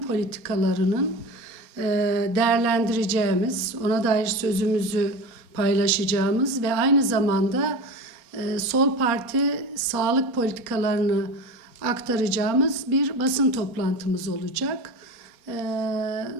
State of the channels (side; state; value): left; late; 4.2 ms